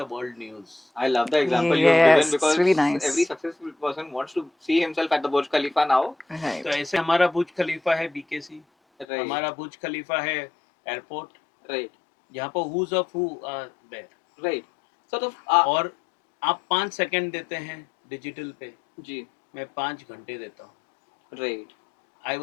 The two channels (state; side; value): drops out; right; at 9.1 s